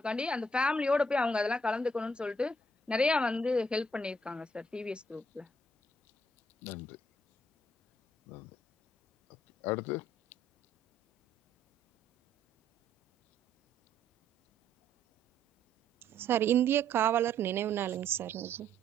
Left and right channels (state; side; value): normal; both; correlation 0.67